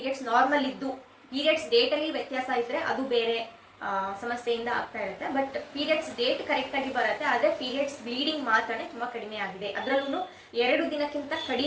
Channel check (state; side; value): identical; both; correlation 1.00